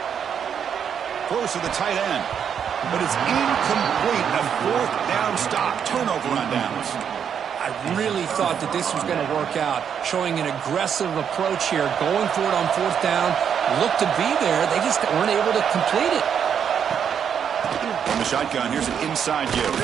Throws to the tight end. But it's incomplete. A fourth down stop. Turnover on downs. I really thought that this was going to work out, showing an aggressive approach here, going for it on fourth down. Looked to be there. They just weren't able to complete it. From the shotgun, here's an inside give.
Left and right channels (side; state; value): left; quieter; 7.9 dB